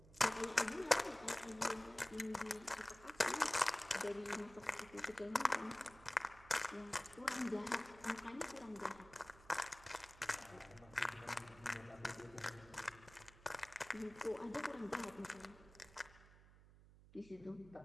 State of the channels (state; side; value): noise; right; hum, 21 dB below the sound